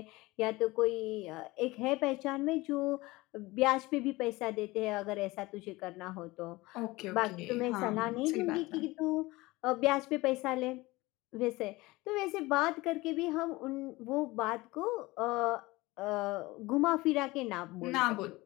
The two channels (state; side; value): quieter; right; 21.0 dB